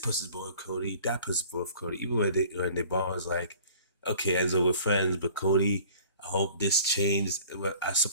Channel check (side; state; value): both; inverted; correlation -0.48